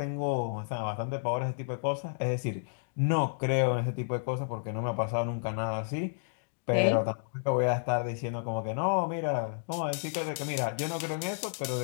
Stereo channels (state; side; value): silent; right; digital silence